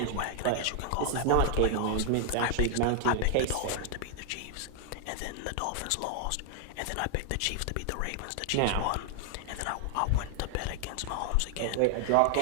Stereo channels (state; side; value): different; both; correlation 0.00